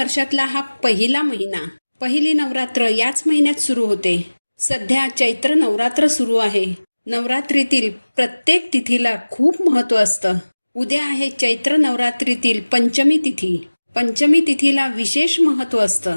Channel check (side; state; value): both; inverted; correlation -1.00